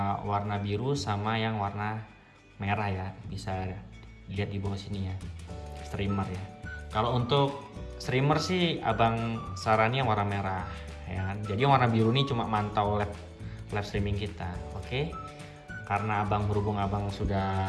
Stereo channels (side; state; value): both; identical; correlation 1.00